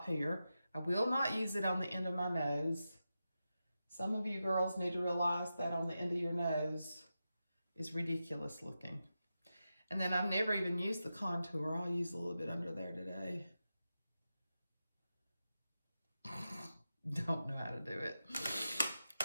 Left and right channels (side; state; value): both; inverted; correlation -0.90